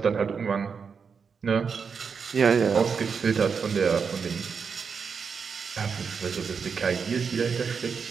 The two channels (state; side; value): quieter; left; 5.9 dB